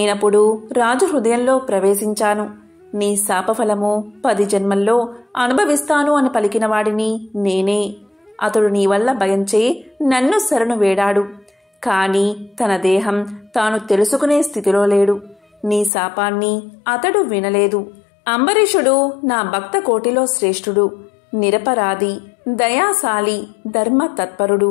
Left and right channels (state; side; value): drops out; right; at 15.9 s